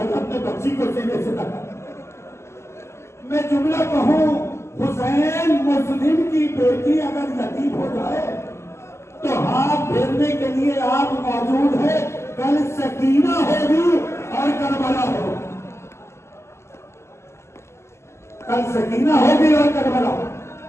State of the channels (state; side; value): late; right; 0.13 ms